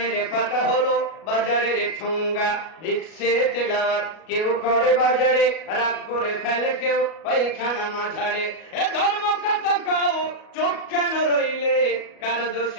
পাতা হলো বাজারের ঠুঙ্গা। দেখছে তেলাওয়াত কেউ করে বাজারে, রাগ করে ফেলে কেউ পায়খানা মাঝারে। এ ধর্ম কথা কাও চোখ কেন রইলে, কার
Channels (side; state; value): right; late; 37 ms